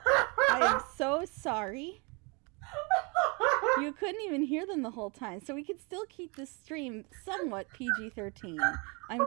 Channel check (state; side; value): quieter; left; 31.0 dB